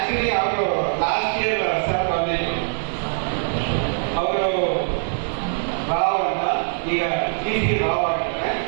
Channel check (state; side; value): silent; left; digital silence